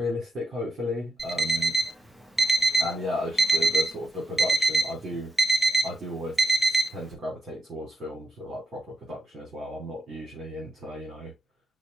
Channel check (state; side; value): normal; both; correlation 0.83